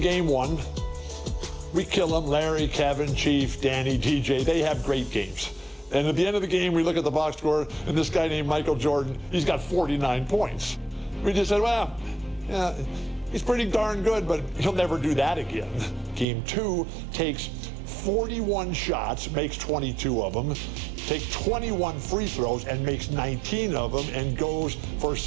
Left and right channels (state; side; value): drops out; left; at 16.2 s